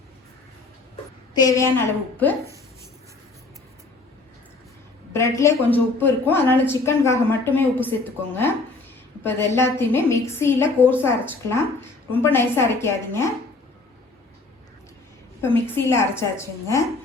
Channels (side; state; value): right; quieter; 3.5 dB